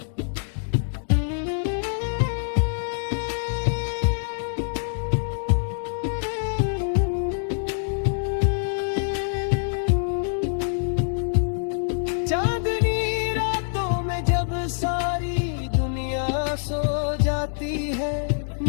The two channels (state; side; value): silent; right; digital silence